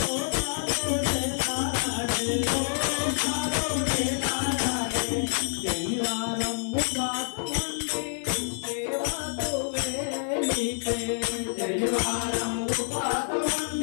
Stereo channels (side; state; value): right; silent; 60 dB below the other